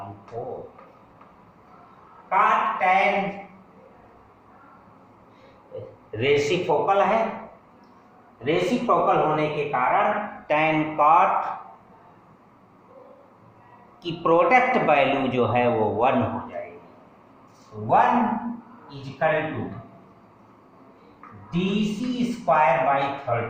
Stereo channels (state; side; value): identical; both; correlation 1.00